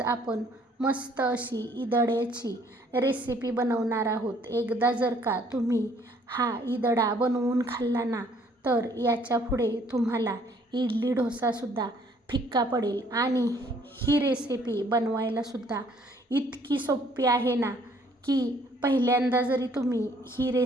आपण मस्त अशी ईदड्याची रेसिपी बनवणार आहोत. एकदा जर का तुम्ही हा ईदडा बनवून खाल्ला ना, तर याच्या पुढे तुम्हाला इडली डोसासुद्धा फिक्का पडेल. आणि ही रेसिपी बनवायलासुद्धा इतकी सोपी आहे ना, की पहिल्यांदा जरी तुम्ही ही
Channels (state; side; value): normal; both; correlation 0.62